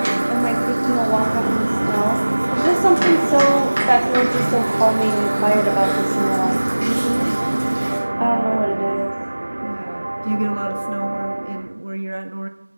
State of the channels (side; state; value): both; inverted; correlation -1.00